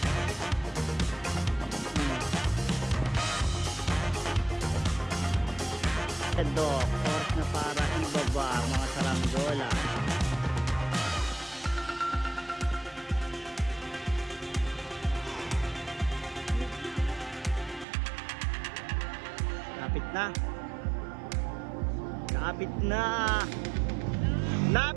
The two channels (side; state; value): left; drops out; at 17.9 s